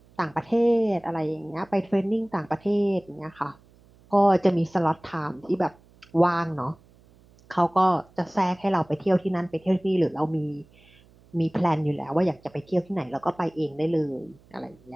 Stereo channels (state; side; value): noise; right; hum, 28 dB below the sound